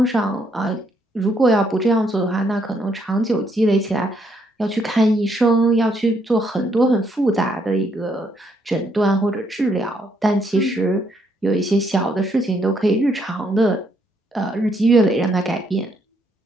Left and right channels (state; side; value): normal; both; correlation 0.73